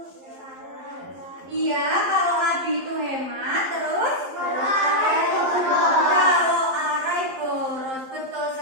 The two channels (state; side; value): late; left; 11 ms